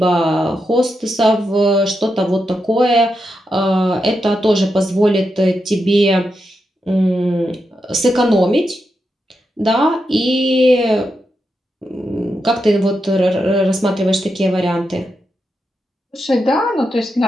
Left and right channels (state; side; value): normal; both; correlation 0.86